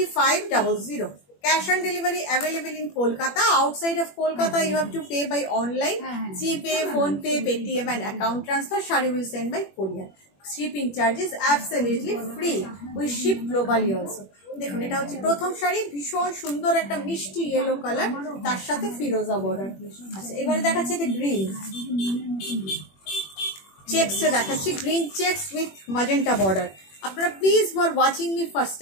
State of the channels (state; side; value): late; right; 21 ms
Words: Cash on delivery available in Kolkata. Outside of Kolkata, you have to pay by online, GPay, PhonePe, Paytm and account transfer. Shari will send by courier. Shipping charges absolutely free. We ship globally also. দেখুন এটা হচ্ছে প্রথম শাড়ি, ভীষণ সুন্দর একটা মিষ্টি yellow colour, তার সাথে ফিরোজা বর্ডার। আচ্ছা, এবারে দেখাচ্ছে যে গ্রিন চেকসে দেখাচ্ছি, green checks with magenta border. আপনারা please who are watching me first